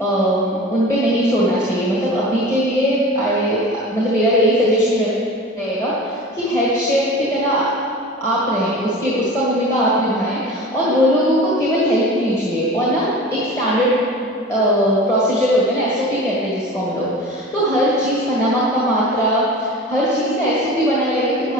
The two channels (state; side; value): normal; both; correlation 0.37